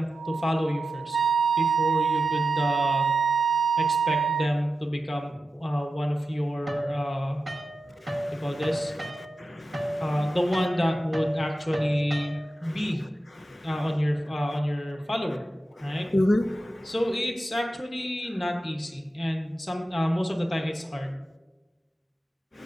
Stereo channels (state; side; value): normal; both; correlation 0.92